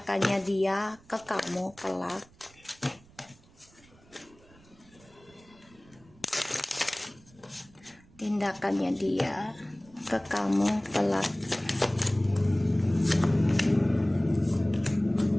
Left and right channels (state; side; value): noise; right; rumble, 27 dB below the sound